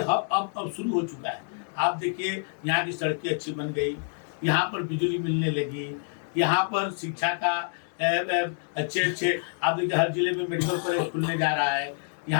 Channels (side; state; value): right; silent; 60 dB below the other